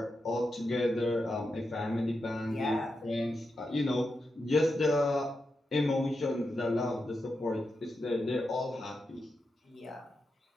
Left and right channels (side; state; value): both; normal; correlation 0.87